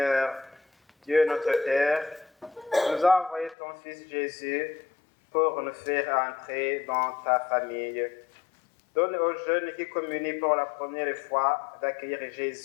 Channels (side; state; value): right; drops out; at 3.6 s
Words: Dieu notre Père, tu nous as envoyé ton Fils Jésus pour nous faire entrer dans ta famille. Donne aux jeunes qui communient pour la première fois d'accueillir